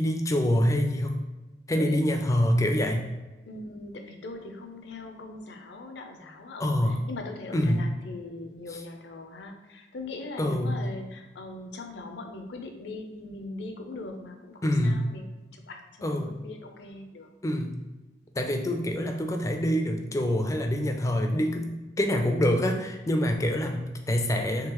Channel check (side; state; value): both; normal; correlation 0.83